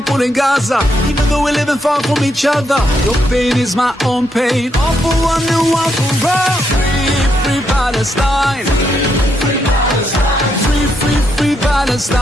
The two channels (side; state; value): both; normal; correlation 0.78